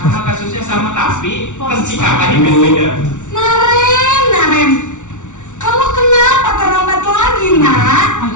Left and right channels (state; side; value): late; right; 0.85 ms